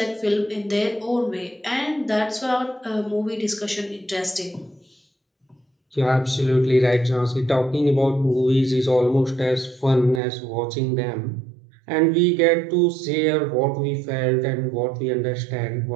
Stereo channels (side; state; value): left; drops out; at 10.2 s